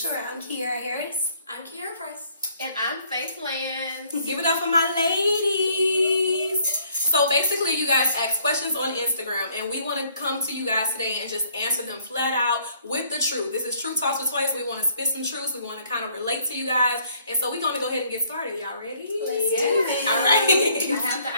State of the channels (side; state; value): both; inverted; correlation -0.63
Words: I'm Kiara Harris. I'm Kiara Price. And I'm Faith Lance. Give it up for my ladies. So basically, you guys ask questions on Instagram, and we want to come to you guys today and just answer them flat out with the truth. This is Truth Talks with Twice. We want to spit some truths. We want to kind of relate to you guys. And so we're going to go ahead and get started. Y'all ready? Let's do it. All right. I have the